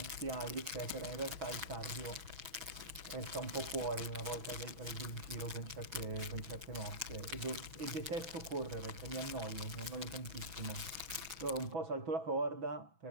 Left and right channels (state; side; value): late; left; 6.1 ms